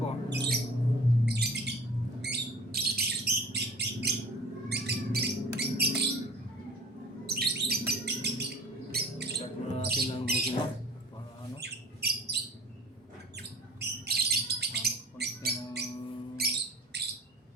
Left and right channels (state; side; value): normal; both; correlation 0.43